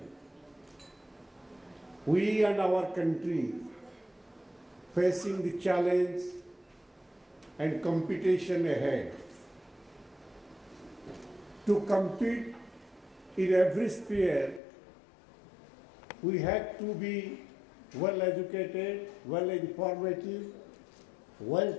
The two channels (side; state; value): right; drops out; at 14.6 s